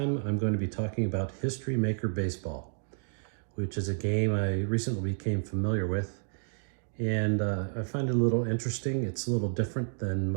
I'm going to be talking about History Maker Baseball, which is a game I recently became familiar with, and I find it a little interesting. It's a little different than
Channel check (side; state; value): left; silent; digital silence